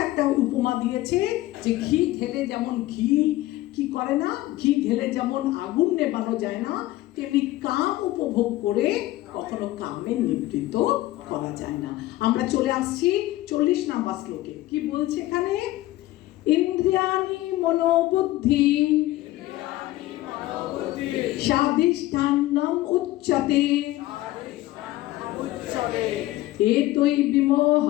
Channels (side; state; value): right; quieter; 16.7 dB